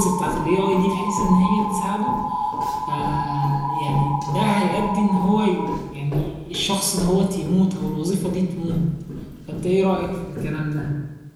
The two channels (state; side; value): identical; both; correlation 1.00